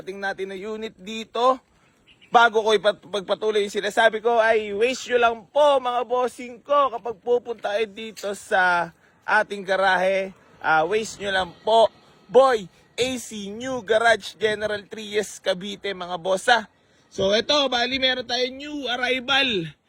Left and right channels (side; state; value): both; identical; correlation 1.00